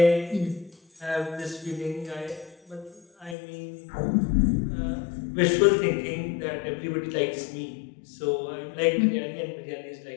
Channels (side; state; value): right; drops out; at 3.4 s